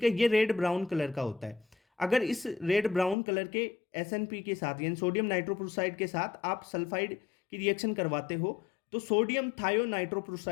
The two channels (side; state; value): right; drops out; at 3.2 s